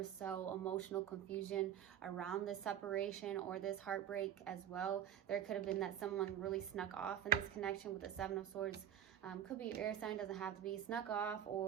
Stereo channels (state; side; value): quieter; left; 10.0 dB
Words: so emotional confusion around this separation or this heartbreak as well. There could have been that someone really snuck off in this connection with the Seven of Swords. Could be air sign, doesn't have to be, snuck off,